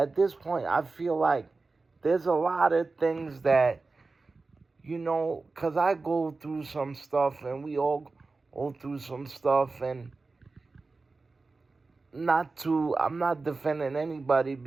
this point I feel like there's a lot of things that, because I go through some stuff and we all go through some stuff, and I'm not defending anybody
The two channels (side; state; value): left; quieter; 3.8 dB